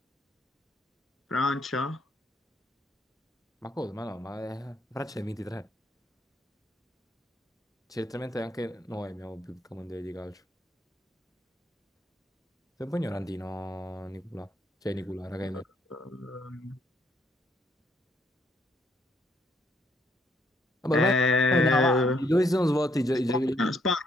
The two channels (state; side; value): normal; both; correlation 0.71